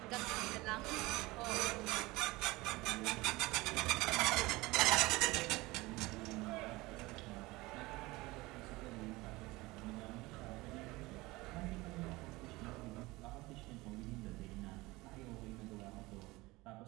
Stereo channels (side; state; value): left; quieter; 21.2 dB